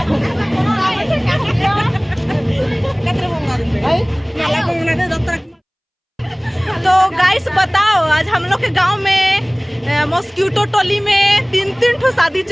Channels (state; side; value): identical; both; correlation 1.00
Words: तो गाइस बताओ, आज हम लोग के गांव में मॉस्किटो टोली में 3 ठो शादी